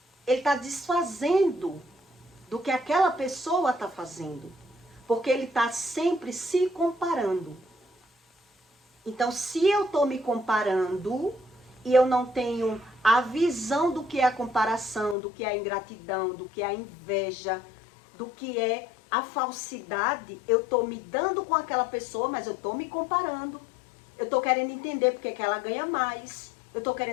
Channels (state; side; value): drops out; right; at 15.2 s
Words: Ele está desfazendo do que aquela pessoa está fazendo. Porque ele está sempre se comparando. Então, se eu estou me comparando e eu não tenho a visão do que é a comparação, do que é a ingratidão, do que é a inveja, do que é a falsidade, eu estou me dando com aquela pessoa, mas eu estou me comparando. Eu estou querendo entender porque que ela ganha mais. Eu estou